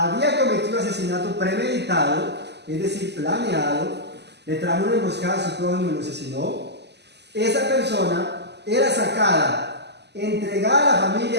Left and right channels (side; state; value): left; late; 0.50 ms